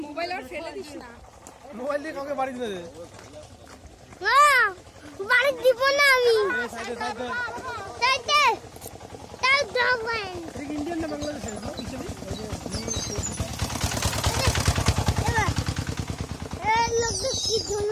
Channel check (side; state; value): both; identical; correlation 1.00